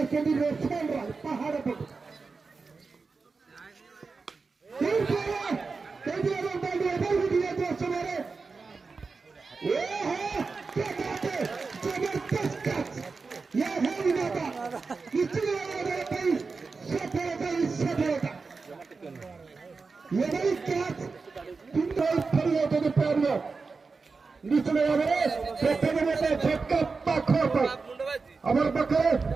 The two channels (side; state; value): left; quieter; 4.4 dB